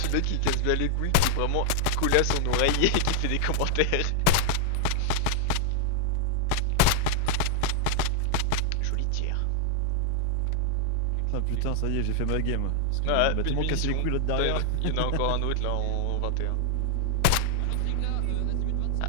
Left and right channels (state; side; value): different; both; correlation -0.01